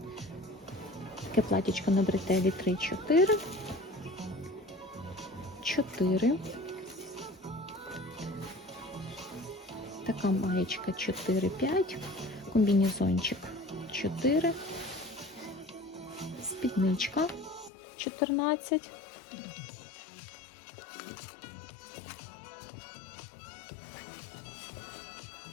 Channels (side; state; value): right; drops out; at 17.7 s